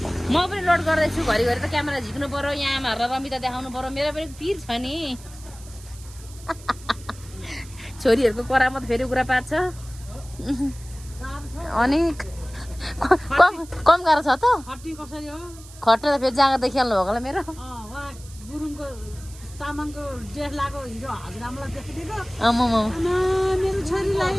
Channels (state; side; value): noise; right; hiss, 20 dB below the sound